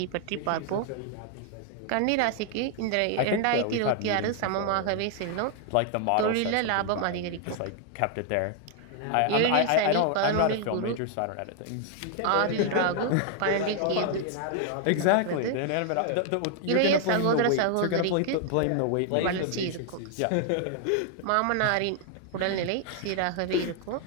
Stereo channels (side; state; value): both; different; correlation 0.00